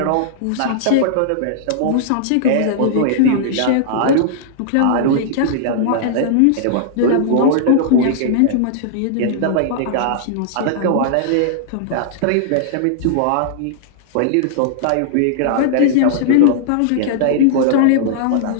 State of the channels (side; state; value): both; different; correlation -0.01